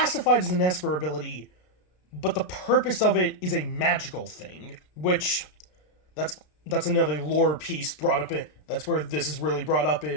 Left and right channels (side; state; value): right; late; 33 ms